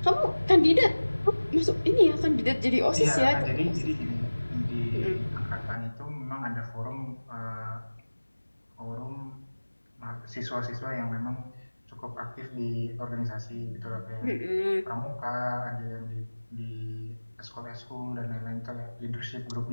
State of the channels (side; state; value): both; inverted; correlation -1.00